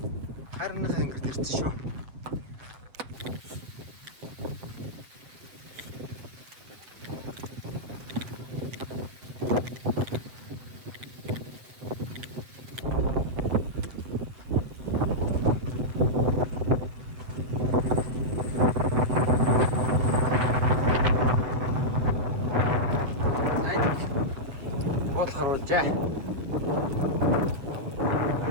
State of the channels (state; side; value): late; left; 8.0 ms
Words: Харинах ангирт ирсэн шүү. Харуулжээ.